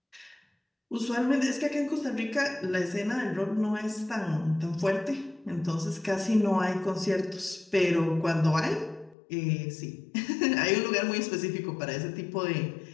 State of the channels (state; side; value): drops out; right; at 9.2 s